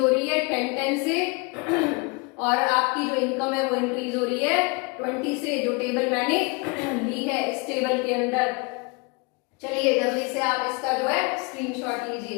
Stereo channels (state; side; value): quieter; right; 29.9 dB